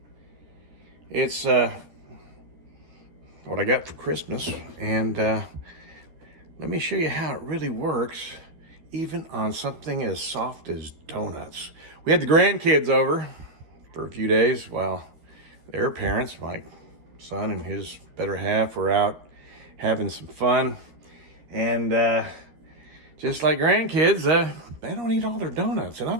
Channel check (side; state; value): left; late; 12 ms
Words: It's what I got for Christmas, and let me show you how it really works, even on something as soft as donuts. We had the grandkids over for a few days while their parents, my son and his better half, were out having some fun. And just like grandkids, they don't eat all their donuts. And I'll